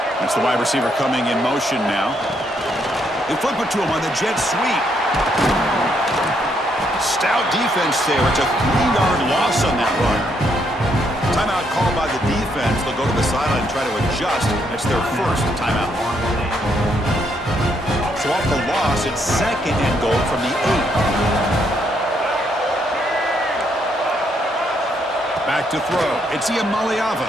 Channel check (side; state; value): both; normal; correlation 0.74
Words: That's the wide receiver coming in motion now. They flip it to him on the jet sweep. Stout defense there. It's a 3-yard loss on that run. Timeout called by the defense. They'll go to the sideline and try to adjust. That's their first timeout. So off the loss, it's second and goal from the 8. Back to throw. It's Iamaleava.